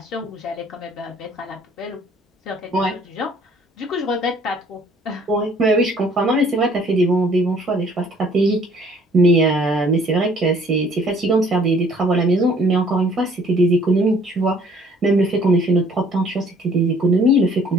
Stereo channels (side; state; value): both; normal; correlation 0.58